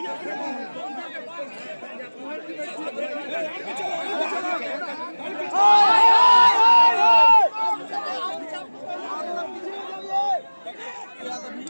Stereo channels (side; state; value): both; inverted; correlation -1.00